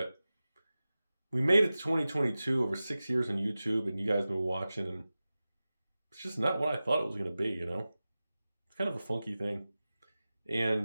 we made it to 2022, over 6 years on YouTube, and you guys have been watching, and it's just not what I thought it was going to be, you know? It's kind of a funky thing.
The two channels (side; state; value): both; inverted; correlation -0.96